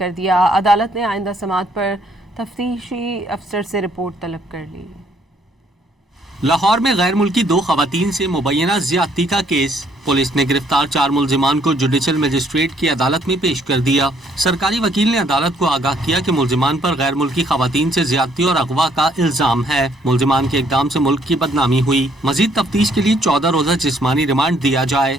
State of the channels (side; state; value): both; normal; correlation 0.66